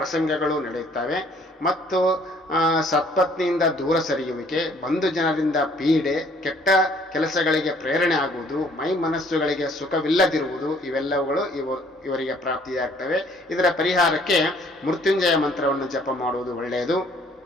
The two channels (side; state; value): both; normal; correlation 0.60